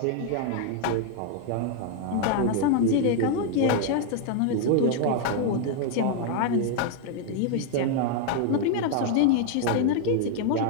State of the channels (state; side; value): different; both; correlation 0.00